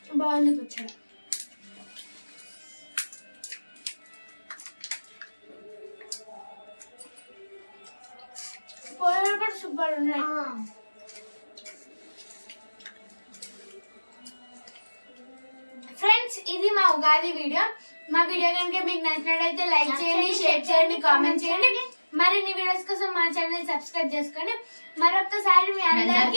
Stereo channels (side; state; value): both; inverted; correlation -1.00